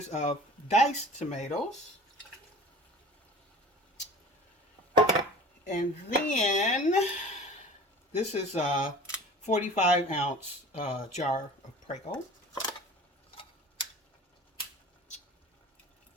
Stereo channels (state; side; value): normal; both; correlation 0.41